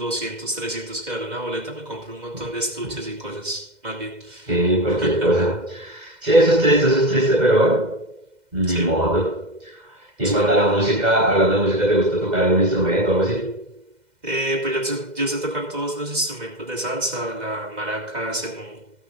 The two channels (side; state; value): left; late; 2.0 ms